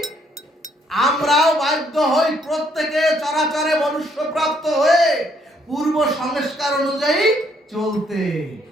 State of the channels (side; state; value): both; normal; correlation 0.69